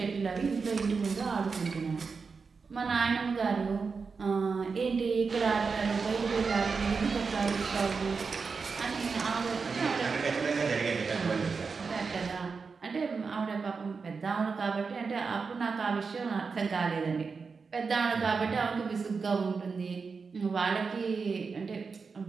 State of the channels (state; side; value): quieter; left; 5.0 dB